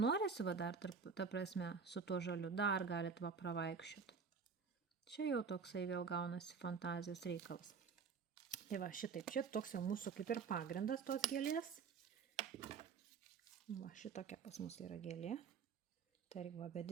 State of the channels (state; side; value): quieter; left; 5.7 dB